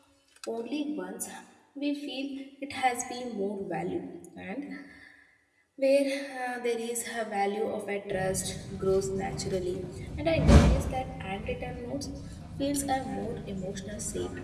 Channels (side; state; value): both; identical; correlation 1.00